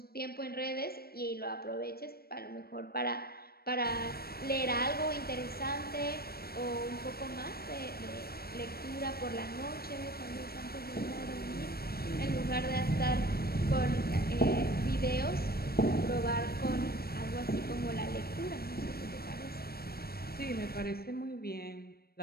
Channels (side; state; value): right; late; 0.45 ms